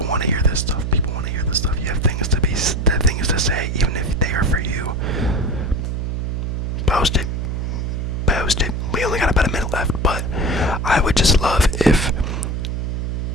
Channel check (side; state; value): right; noise; hum, 2 dB below the sound